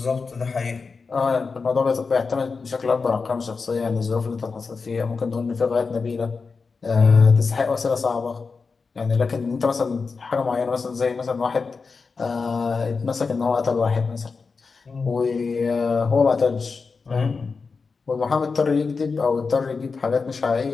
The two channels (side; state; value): right; quieter; 4.7 dB